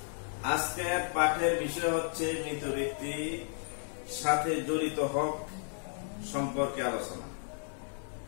আজকের পাঠের বিষয় হচ্ছে মৃত ব্যক্তির সাথে জড়িত হক সম্পর্কে আলোচনা।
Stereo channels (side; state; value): right; silent; 55 dB below the other